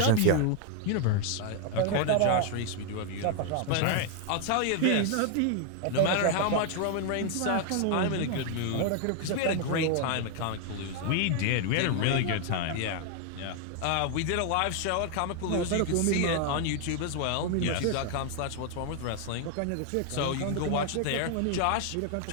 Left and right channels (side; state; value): both; different; correlation 0.00